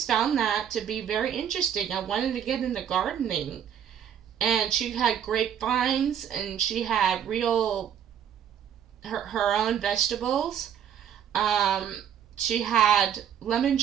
found that to be very interesting. I wanted to get into gardening, and she had grapevines, and she had her own vegetables. She had lemon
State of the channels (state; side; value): quieter; left; 9.1 dB